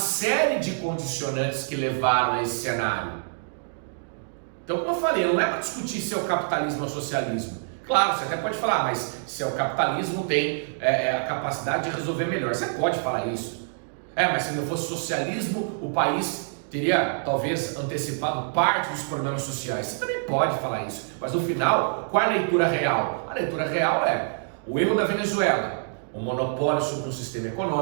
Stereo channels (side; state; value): left; silent; digital silence